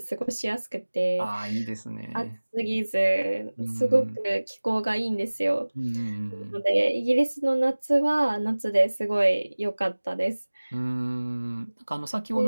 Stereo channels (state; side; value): inverted; both; correlation -1.00